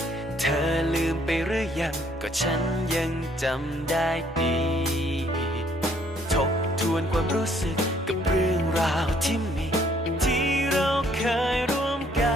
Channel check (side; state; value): both; normal; correlation 0.64